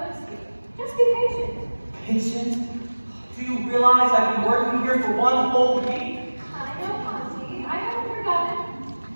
you. Just be patient. Patient? Do you realize I've been working here for one whole week? I know, Auntie. I haven't forgotten.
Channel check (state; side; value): inverted; both; correlation -1.00